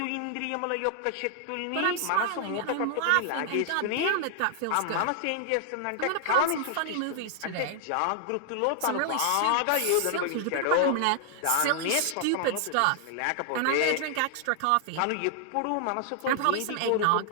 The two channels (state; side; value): different; both; correlation 0.00